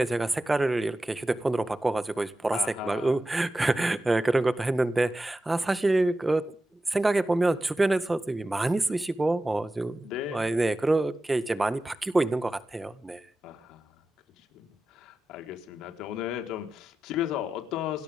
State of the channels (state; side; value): normal; both; correlation 0.93